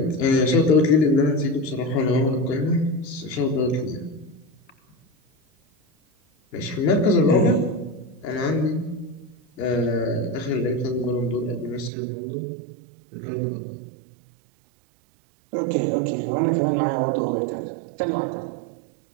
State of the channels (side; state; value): left; drops out; at 11.9 s